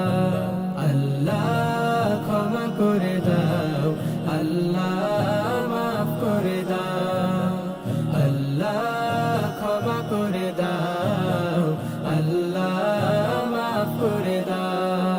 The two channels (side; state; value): both; identical; correlation 1.00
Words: আল্লাহ ক্ষমা করে দাও। আল্লাহ মাফ করে দাও। আল্লাহ ক্ষমা করে দাও। আল্লাহ মাফ করে